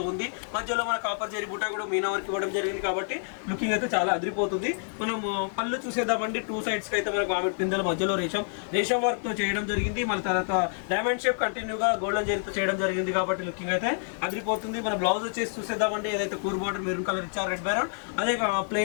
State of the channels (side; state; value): right; silent; 59 dB below the other